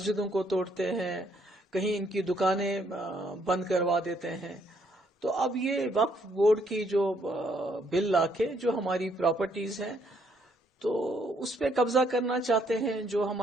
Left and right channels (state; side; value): normal; both; correlation 0.69